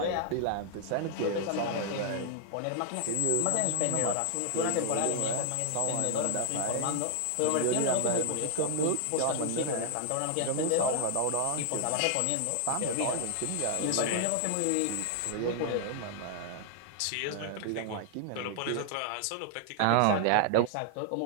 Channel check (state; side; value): different; both; correlation 0.00